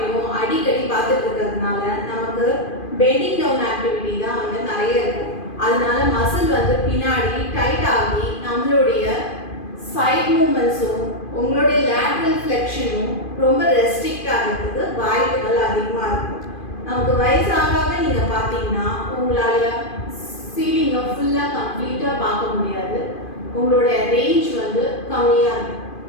அடிக்கடி பார்த்துட்டு இருக்கிறதுனால நமக்கு பெண்டிங் டவுன் ஆக்டிவிட்டி தான் நிறைய இருக்கும். அதனால மசில் பின்னாடி டைட் ஆகி நம்மளுடைய சைட் மூமெண்ட்ஸும் உங்களுடைய லேட்ரல் ஃப்ளெக்ஷனும் ரொம்ப ரெஸ்ட்ரிக்ட் ஆகிறதுக்கு வாய்ப்புகள் அதிகமாக இருக்கும். நமக்கு வயசாக நீங்கள் பார்த்தீங்கன்னா உங்களால் சீலிங்கை ஃபுல்லாக கம்ப்ளீட்டாக பார்க்க முடியாது. உங்களுடைய ரேஞ்ச் கம்மியாக இருக்கும்.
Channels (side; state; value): right; late; 2.5 ms